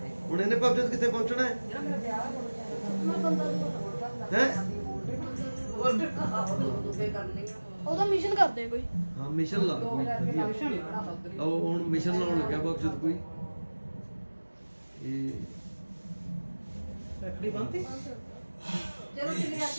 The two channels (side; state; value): both; inverted; correlation -1.00